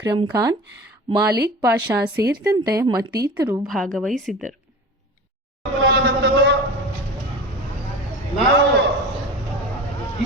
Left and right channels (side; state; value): both; normal; correlation 0.34